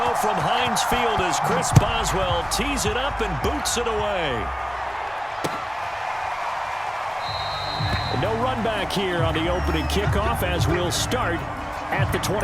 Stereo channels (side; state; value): both; identical; correlation 1.00